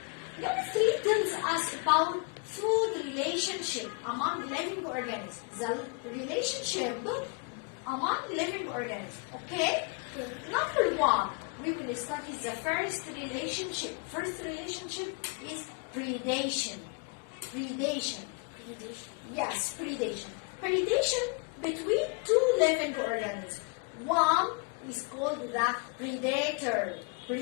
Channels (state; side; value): quieter; right; 30.8 dB